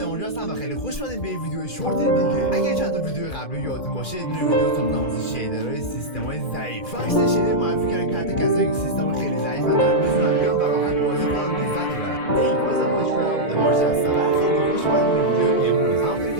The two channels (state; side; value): late; right; 2.5 ms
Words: هستم و خیلی خوش اومدید به ویدیو شورت دیگه. اگه چند تا ویدیو قبلی یادتون باشه یه دونه ویدیو ساختم واسه شیدرهای سیستم‌های ضعیف. فکس شیدر معرفی کردن که حتی کسایی که سیستم خیلی ضعیفن دارن میتونن بیان و راحت بازی کنن و لذت ببرن. ای بازم ماجرا مارش هستم و خیلی خوش اومدید به ویدیو امروز. همونطوری